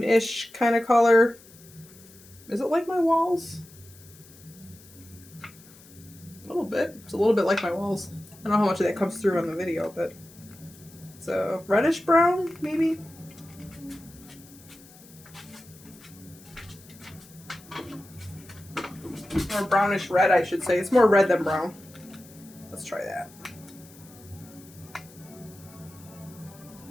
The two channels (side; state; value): left; noise; hiss, 23 dB below the sound